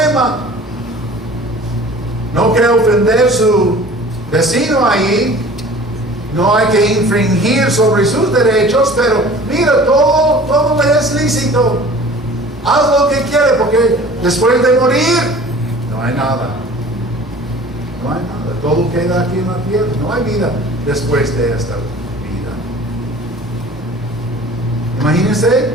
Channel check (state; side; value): normal; both; correlation 0.45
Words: No quiere ofender a su vecino ahí. No hay que infringir sobre sus derechos, pero mira, todo le es lícito. Haz lo que quiere, porque después de morir no hay nada. No hay nada. Todo queda aquí en la tierra. No hay vida después de esta vida. Imagínense,